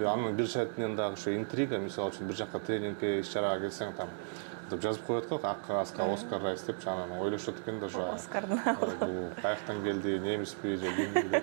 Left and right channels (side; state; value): left; silent; digital silence